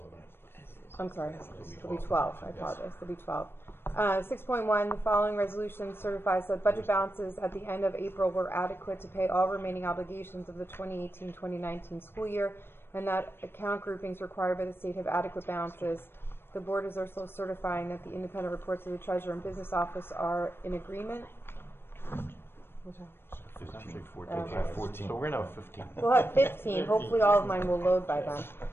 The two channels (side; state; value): right; late; 0.11 ms